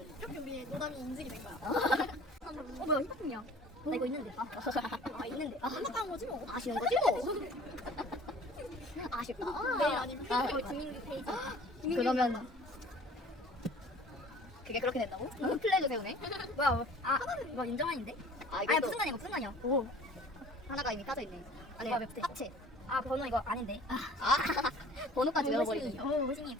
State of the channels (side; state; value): both; normal; correlation 0.48